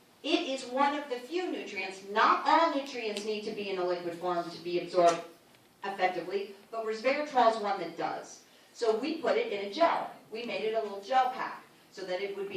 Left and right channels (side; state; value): both; identical; correlation 1.00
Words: it is one of the few nutrients, not all nutrients need to be in a liquid form to be absorbed effectively, but resveratrol is one that does. So we put it in a gel. We made it a little gel pack so that it would